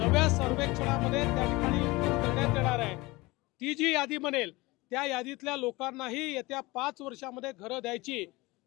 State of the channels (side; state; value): right; quieter; 22.2 dB